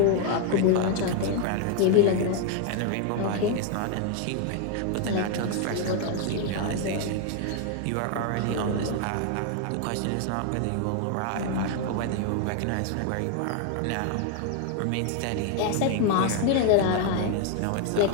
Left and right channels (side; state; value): both; different; correlation 0.00